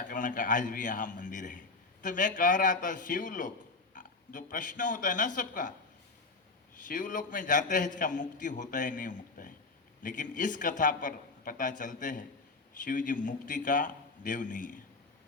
कर्ण का आज भी यहाँ मंदिर है। तो मैं कह रहा था शिवलोक जो प्रश्न होता है ना सबका, शिवलोक में जाते हैं इसका मुक्ति होता है नहीं होता है, लेकिन इस कथा पर पता चलते हैं शिव जी मुक्ति का देव नहीं है।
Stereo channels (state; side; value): quieter; right; 3.8 dB